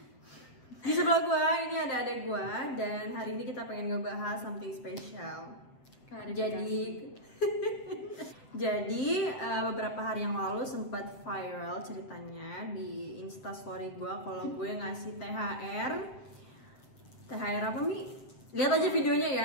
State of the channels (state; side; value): late; right; 7.9 ms